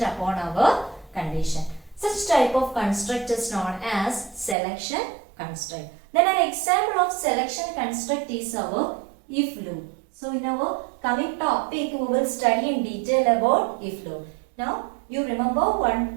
upon our condition. Such type of construct is known as selection construct. Then an example of selection construct is our if loop. So in our coming topic, we will study in detail about if loop. Now you remember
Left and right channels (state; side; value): drops out; left; at 4.5 s